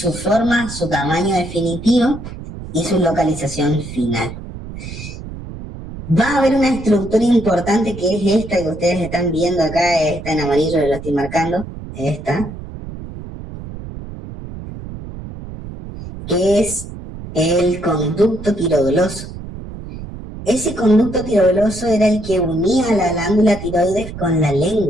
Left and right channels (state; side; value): noise; right; rumble, 11 dB below the sound